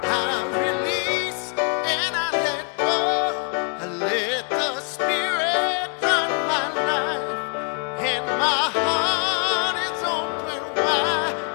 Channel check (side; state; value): right; quieter; 39.4 dB